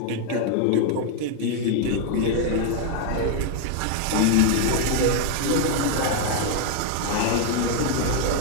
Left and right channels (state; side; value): different; both; correlation 0.00